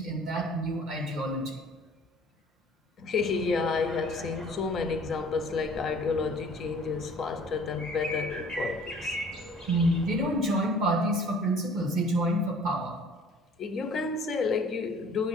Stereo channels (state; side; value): normal; both; correlation 0.51